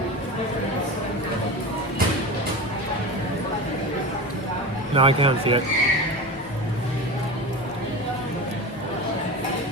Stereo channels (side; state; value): both; normal; correlation 0.27